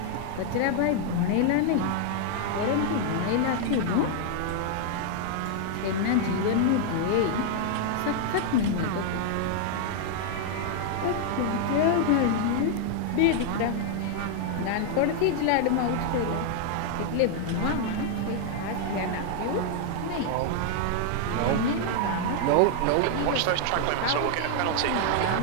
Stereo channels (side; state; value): both; different; correlation 0.00